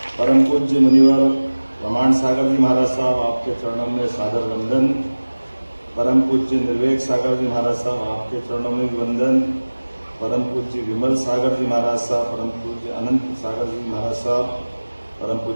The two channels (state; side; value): inverted; both; correlation -1.00